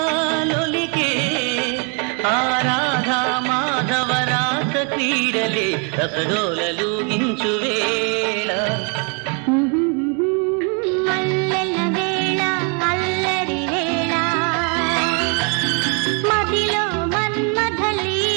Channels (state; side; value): quieter; left; 37.2 dB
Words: ఆరాధా మాధవ రాస క్రీడలే రసగోలలు గించు వేళ. మల్లెల వేళ అల్లరి వేళ మదిలో